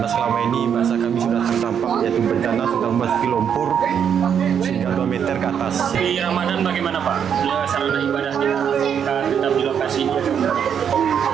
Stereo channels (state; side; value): quieter; left; 8.0 dB